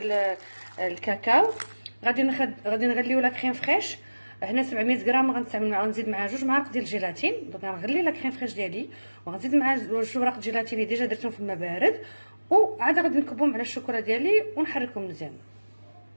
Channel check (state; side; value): inverted; both; correlation -1.00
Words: الكاكاو. غادي نغليو لا كريم فريش. هنا 700 غرام غنزيد معها 2 معالق ديال الجيلاتين. دونك غنغلي لا كريم فريش ديالي وغنزيد معها 2 وراق الجيلاتين اللي ديجا درتهم في الماء بارد، وعاد غادي نكبهم على الشوكولا ديالي ونحركهم مزيان.